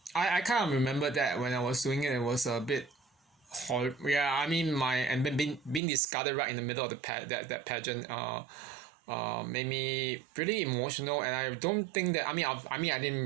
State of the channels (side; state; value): left; drops out; at 5.8 s